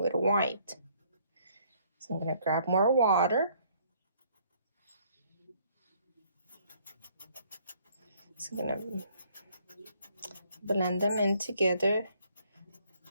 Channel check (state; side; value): inverted; both; correlation -0.64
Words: white. So I'm going to grab more water. So I'm going to blend them in together